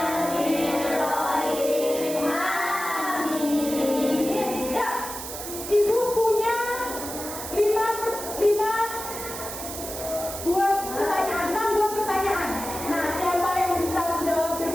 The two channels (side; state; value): right; noise; hiss, 8 dB below the sound